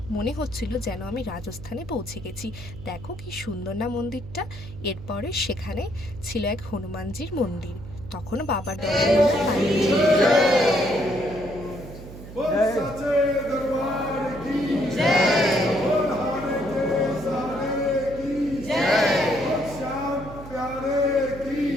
মনে হচ্ছিল যেন আমি রাজস্থানে পৌঁছে গেছি। দেখো কি সুন্দর না মন্দিরটা। এরপরে সেখানে ছিল এক হনুমানজির মন্দির। তখনও বাবার দর্শন আমরা পাইনি।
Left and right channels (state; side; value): noise; right; hum, 14 dB below the sound